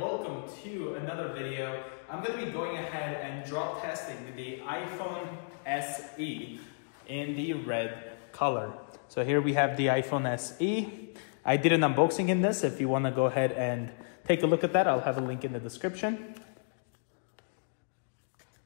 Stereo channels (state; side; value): silent; right; digital silence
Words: to another video. I'm going to be going ahead and drop testing the iPhone SE in the red color. So here we have the iPhone SE. I did an unboxing in this. If you want to go ahead and take a look at that, I'll have a link in the description.